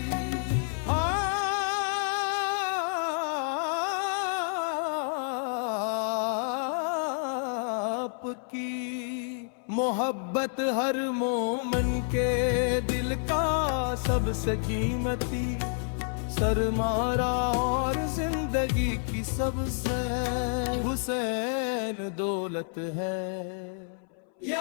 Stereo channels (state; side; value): silent; right; 58 dB below the other